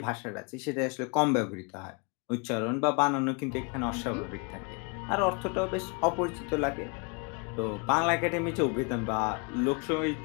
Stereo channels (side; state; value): right; quieter; 33.2 dB